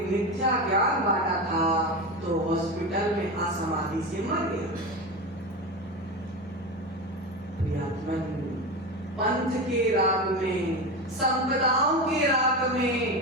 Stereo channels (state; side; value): normal; both; correlation 0.21